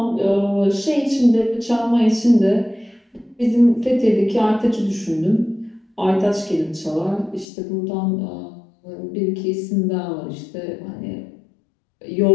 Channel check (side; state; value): right; drops out; at 7.5 s